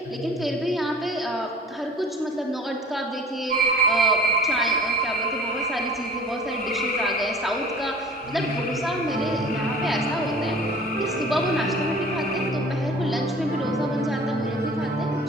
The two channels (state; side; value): normal; both; correlation 0.46